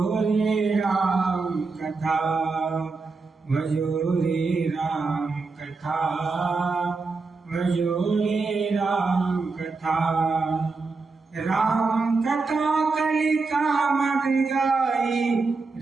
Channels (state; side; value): quieter; left; 4.1 dB